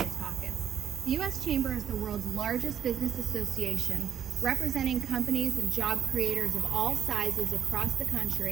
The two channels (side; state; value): left; quieter; 9.1 dB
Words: The U.S. Chamber is the world's largest business association, representing companies and job creators of all sizes across the